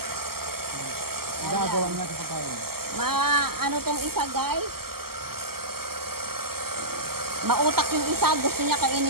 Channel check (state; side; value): late; left; 0.95 ms